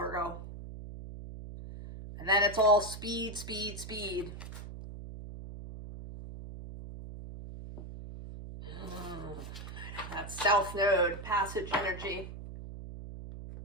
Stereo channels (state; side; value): noise; right; hum, 11 dB below the sound